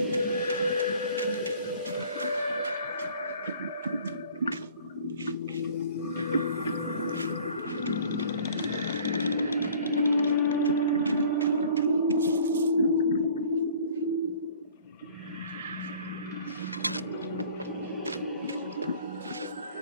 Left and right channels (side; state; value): both; inverted; correlation -0.50